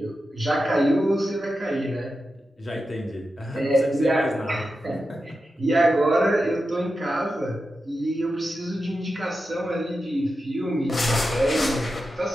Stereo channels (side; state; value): both; normal; correlation 0.90